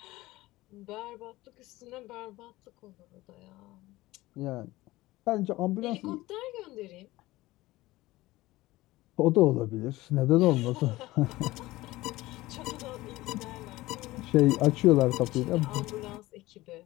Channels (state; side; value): quieter; right; 18.5 dB